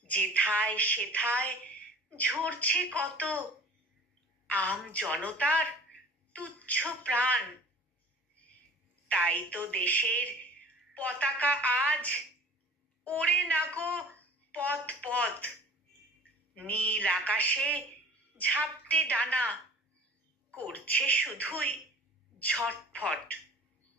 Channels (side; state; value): both; normal; correlation 0.45